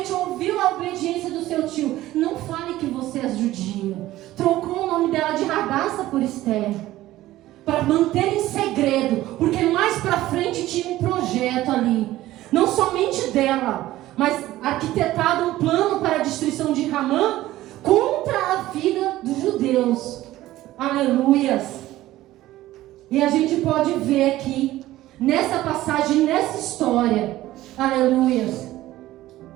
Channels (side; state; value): left; quieter; 15.6 dB